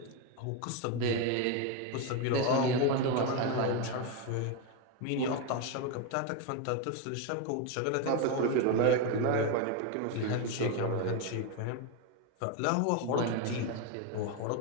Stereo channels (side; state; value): both; different; correlation 0.02